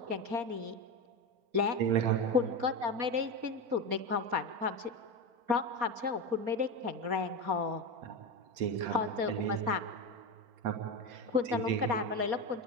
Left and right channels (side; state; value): left; late; 4.2 ms